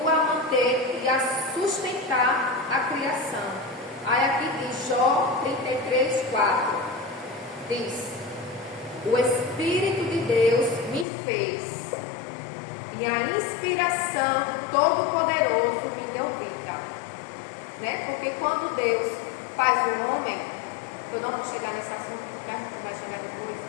a manter e a sustentar a criação. Aí aqui diz, Jó 33:4, diz: o Espírito de Deus me fez, e a inspiração do Todo-Poderoso me deu vida. Né? Porque quando Deus faz o homem, eu não vou chegar nesse assunto, porque a gente vai chegar depois,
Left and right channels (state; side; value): drops out; right; at 11.1 s